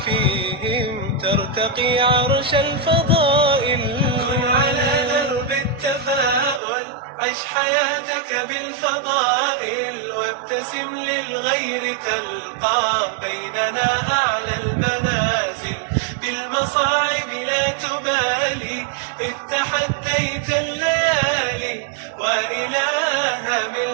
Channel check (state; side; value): drops out; left; at 6.6 s